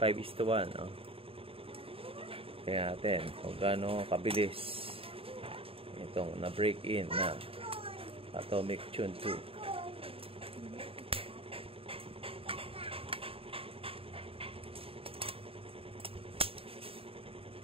Tingnan natin kung gaano kabilis itong na break in na Atomic Tune 2.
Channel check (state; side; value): late; left; 0.27 ms